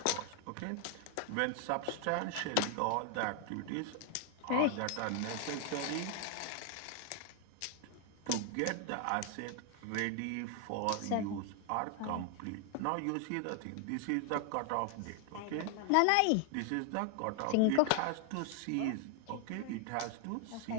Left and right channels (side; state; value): both; different; correlation 0.00